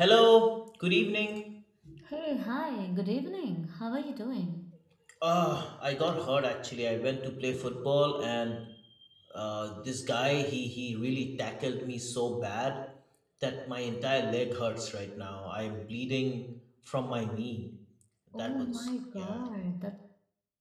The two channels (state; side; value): identical; both; correlation 1.00